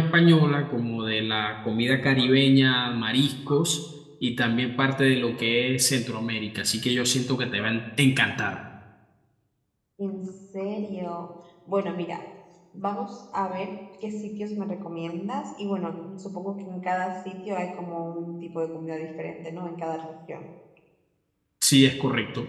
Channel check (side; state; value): both; identical; correlation 1.00